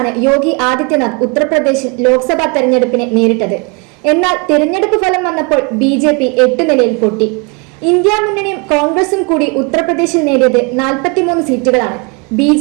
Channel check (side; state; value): left; quieter; 31.8 dB